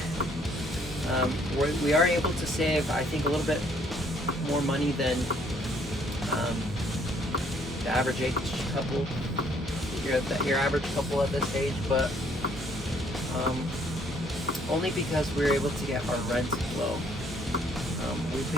We are able to save, I think, a little bit more money than the average age couple. Your average couple at this age, but only because we're able to get our rent low. We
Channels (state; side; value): normal; both; correlation 0.64